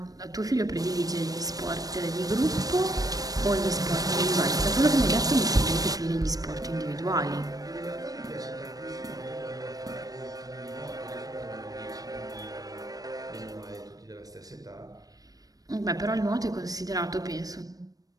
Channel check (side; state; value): left; late; 0.18 ms